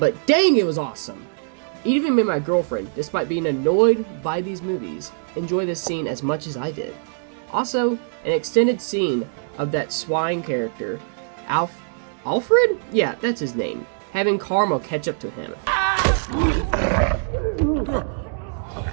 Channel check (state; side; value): silent; left; digital silence